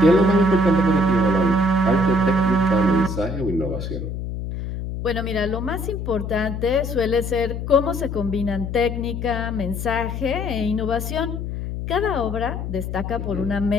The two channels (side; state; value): left; noise; hum, 5 dB below the sound